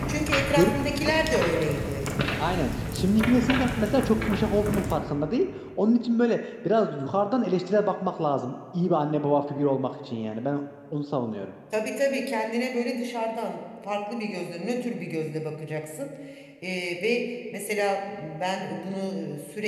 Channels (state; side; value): identical; both; correlation 1.00